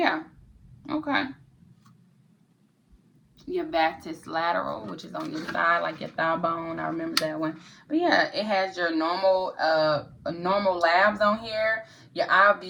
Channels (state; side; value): identical; both; correlation 1.00